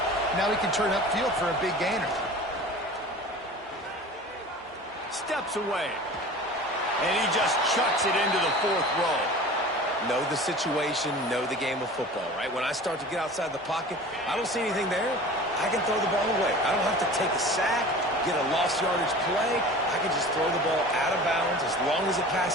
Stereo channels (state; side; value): normal; both; correlation 0.39